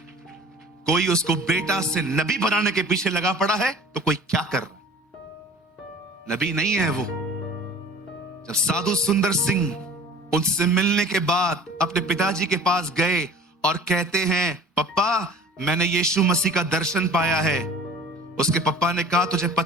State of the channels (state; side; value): normal; both; correlation 0.44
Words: कोई उसको बेटा से नबी बनाने के पीछे लगा पड़ा है तो कोई क्या कर रहा है? नबी नहीं है वो। जब साधु सुंदर सिंह उनसे मिलने के बाद अपने पिताजी के पास गए और कहते हैं पप्पा मैंने यीशु मसीह का दर्शन पाया है। उसके पप्पा ने कहा तुझे